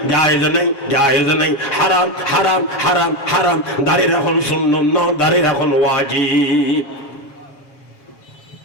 জায়েজ নাই, জায়েজ নাই, হারাম হারাম হারাম হারাম। দাড়ি রাখুন সুন্নাত না, দাড়ি রাখুন ওয়াজিব।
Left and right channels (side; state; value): right; late; 7.2 ms